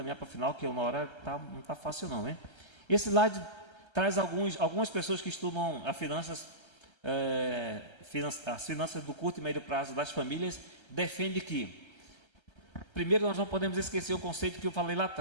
para o final, que uma hora não está fácil não, né? Esse slide traz algumas pessoas que estudam as finanças do curto e médio prazo das famílias, defende que, primeiro, nós não podemos esquecer o conceito que eu falei lá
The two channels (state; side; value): late; right; 1.3 ms